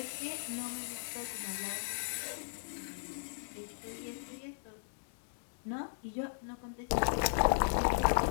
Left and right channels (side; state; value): right; silent; digital silence